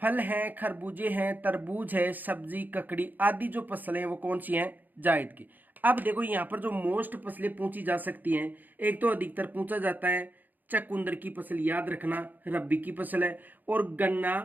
हैं, खरबूजे हैं, तरबूज है, सब्जी, ककड़ी आदि जो फसलें हैं वो कौन सी हैं? जायद की। अब देखो यहाँ पर जो मोस्ट फसलें पूछी जा सकती हैं, एक तो अधिकतर पूछा जाता है चकुंदर की फसल, याद रखना रबी की फसल है, और गन्ना,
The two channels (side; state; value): left; late; 0.086 ms